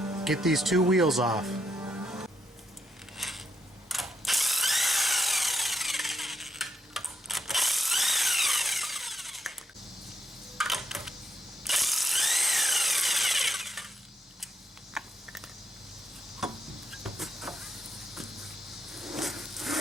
Get these two wheels off.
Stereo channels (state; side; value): normal; both; correlation 0.80